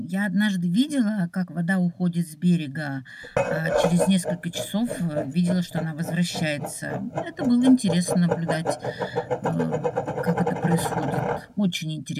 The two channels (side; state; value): both; identical; correlation 1.00